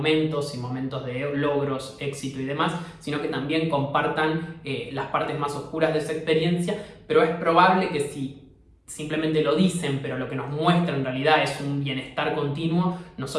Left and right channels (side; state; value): both; identical; correlation 1.00